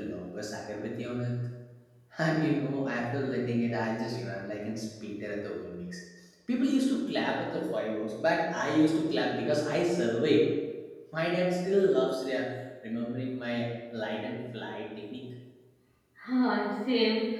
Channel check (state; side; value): identical; both; correlation 1.00